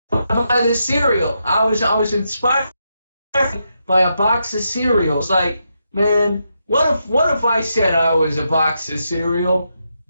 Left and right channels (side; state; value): both; inverted; correlation -0.83